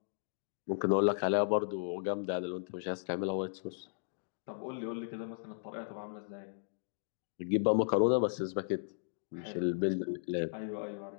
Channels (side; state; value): right; silent; digital silence